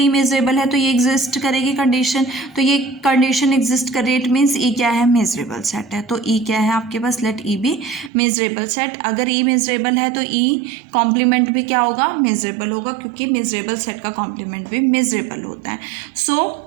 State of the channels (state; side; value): drops out; left; at 8.1 s